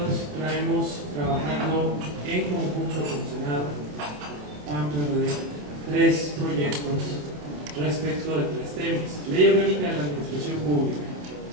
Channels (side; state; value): left; late; 27 ms